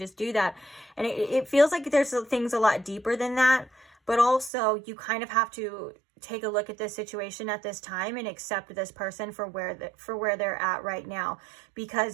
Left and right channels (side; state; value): left; drops out; at 4.5 s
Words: do that? And it feels like there's things a lot deeper than that. But also you kind of have to take a look at this situation at this time and accept this person for where they're at right now,